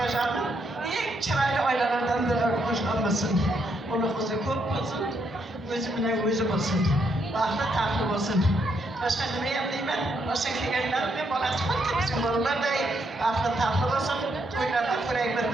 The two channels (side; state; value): both; normal; correlation 0.76